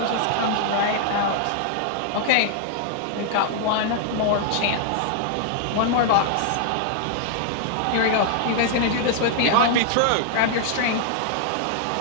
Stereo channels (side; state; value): both; different; correlation -0.01